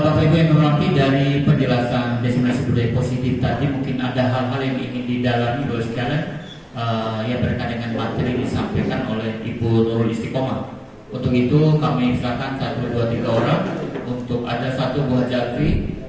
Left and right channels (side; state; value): both; identical; correlation 1.00